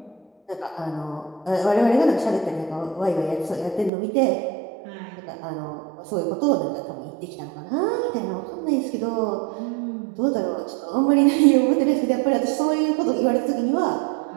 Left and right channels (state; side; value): drops out; left; at 3.9 s